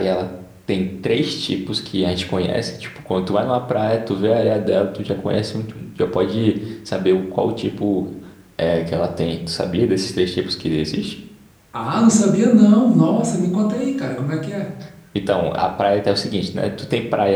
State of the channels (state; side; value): identical; both; correlation 1.00